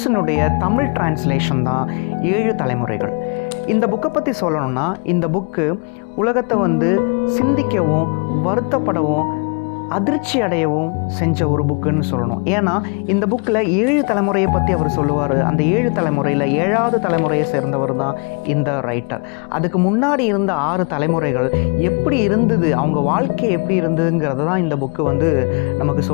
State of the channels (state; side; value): quieter; right; 35.4 dB